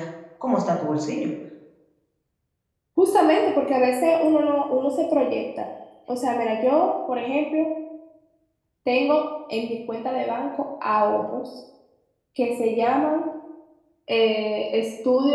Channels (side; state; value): both; identical; correlation 1.00